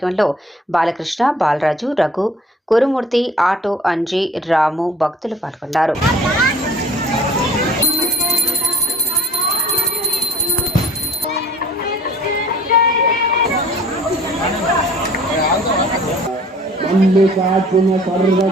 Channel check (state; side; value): normal; both; correlation 0.50